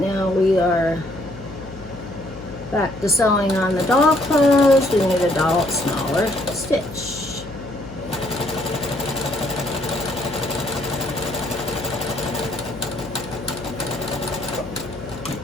we are back to sewing on the doll clothes. We need a smaller stitch.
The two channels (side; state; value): left; noise; hum, 15 dB below the sound